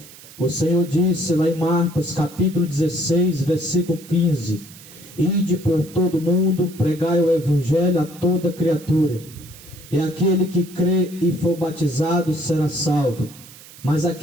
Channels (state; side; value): noise; right; hiss, 20 dB below the sound